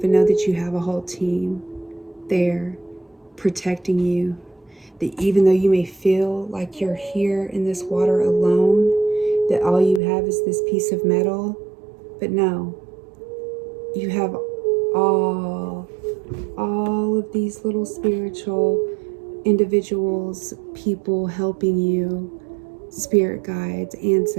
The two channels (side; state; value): left; drops out; at 10.0 s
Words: you have a whole team there protecting you. That even though you may feel like you're here in this water alone, that all you have is this piece of metal, but no, you have all of these little spiritual individuals, people helping you, spirit guides,